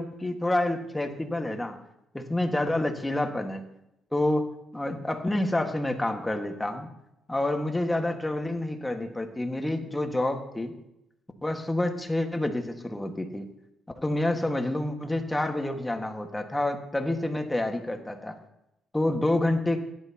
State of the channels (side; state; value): both; normal; correlation 0.94